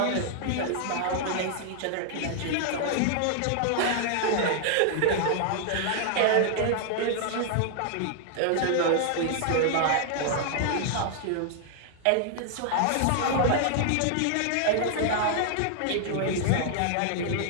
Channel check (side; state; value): both; different; correlation 0.00